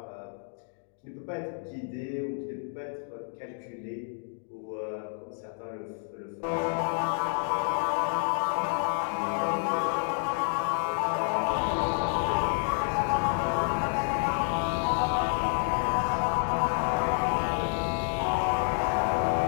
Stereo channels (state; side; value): silent; right; 58 dB below the other